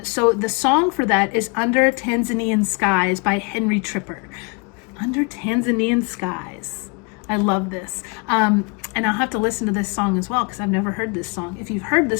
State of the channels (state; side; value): quieter; right; 31.6 dB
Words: So the song for that is Under Tanzanian Skies by Henry Tripper. Under Tanzanian Skies. I love this. And I'll have to listen to this song as well because I've never heard this song. If you've heard